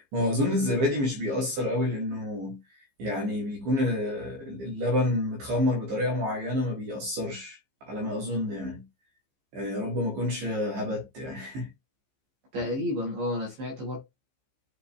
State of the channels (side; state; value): left; late; 15 ms